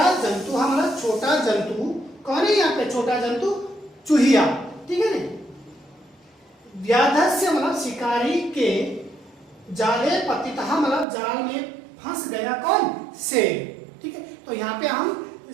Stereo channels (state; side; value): drops out; left; at 11.1 s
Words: जंतु मतलब छोटा जंतु। कौन है यहाँ पे छोटा जंतु? चूहिया, ठीक है ना। व्याधस्य मतलब शिकारी के, जाले पतितः मतलब जाल में फंस गया कौन? शेर, ठीक है। तो यहाँ पे हम